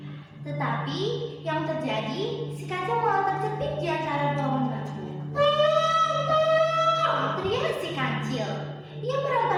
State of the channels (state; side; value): identical; both; correlation 1.00